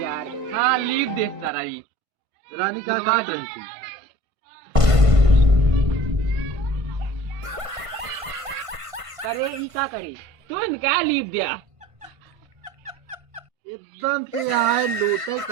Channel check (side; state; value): left; late; 1.5 ms